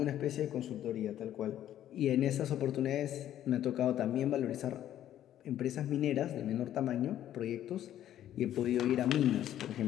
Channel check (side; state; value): right; quieter; 11.7 dB